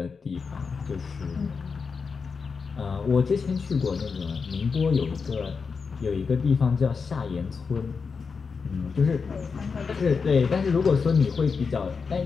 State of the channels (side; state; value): right; quieter; 5.3 dB